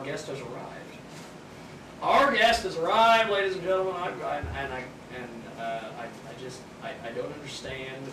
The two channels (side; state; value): both; identical; correlation 1.00